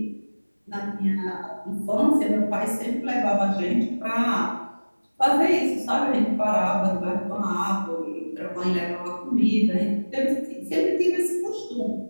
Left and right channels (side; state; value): both; inverted; correlation -1.00